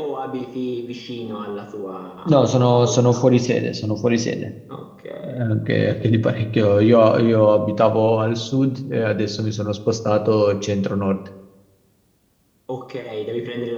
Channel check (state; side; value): identical; both; correlation 1.00